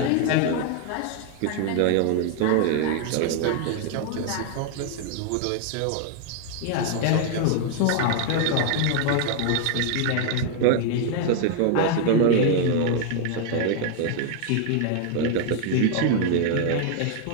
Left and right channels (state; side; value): different; both; correlation 0.00